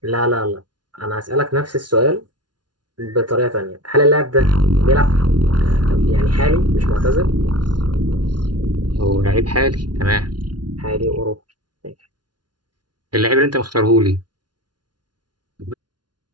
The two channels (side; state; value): left; late; 0.70 ms